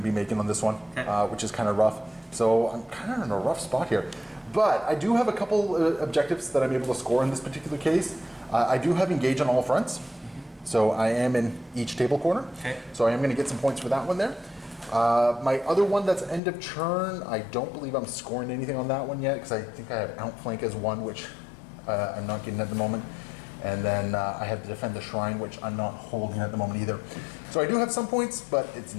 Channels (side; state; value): right; drops out; at 16.4 s